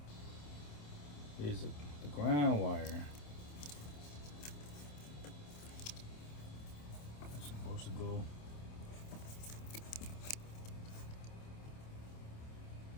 Is the ground wire. That's supposed to go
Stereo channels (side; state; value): right; late; 27 ms